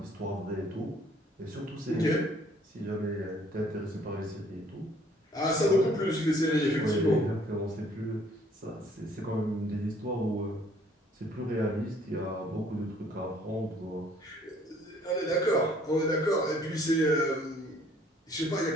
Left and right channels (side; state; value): both; normal; correlation 0.60